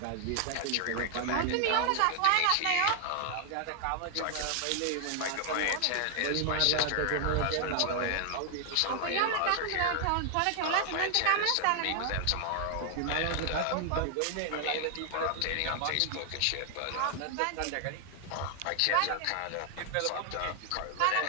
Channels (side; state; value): both; different; correlation 0.00